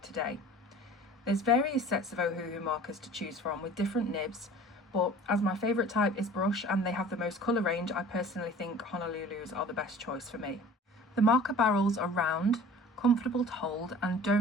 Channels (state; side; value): normal; both; correlation 0.45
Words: There's various sets of Ohuhu markers to choose from with different nibs, but as my favourite type is brush and they have the most colour range, I personally think Honolulu's are the best choice for me. The marker barrels are round, comfortable to hold and